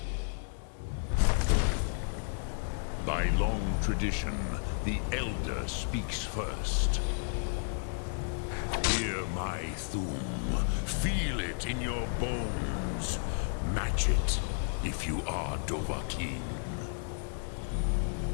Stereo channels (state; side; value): silent; right; digital silence